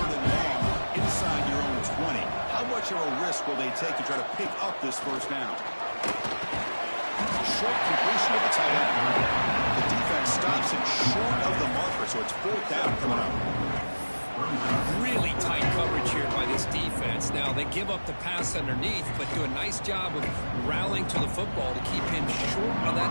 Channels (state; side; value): inverted; both; correlation -1.00